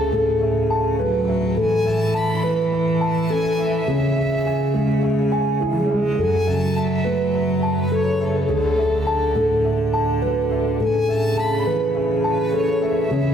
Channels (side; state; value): both; normal; correlation 0.71